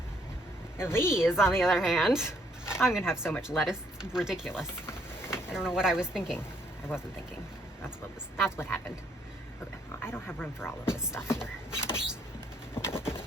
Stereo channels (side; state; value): both; normal; correlation 0.68